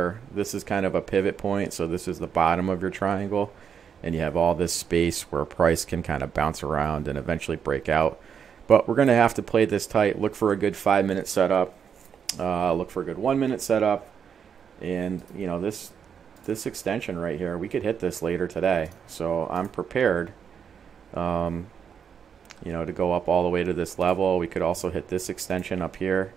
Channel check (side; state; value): left; quieter; 7.4 dB